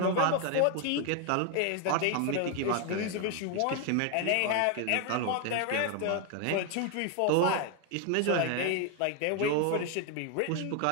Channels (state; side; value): different; both; correlation 0.00